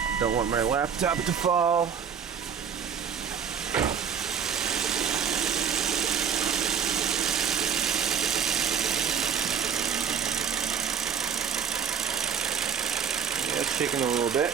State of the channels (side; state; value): left; quieter; 7.3 dB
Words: Don't want my laptop to fall. It's shaking a little bit.